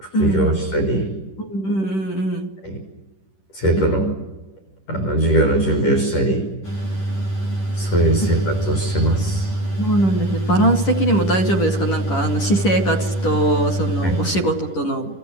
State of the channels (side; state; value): right; late; 10 ms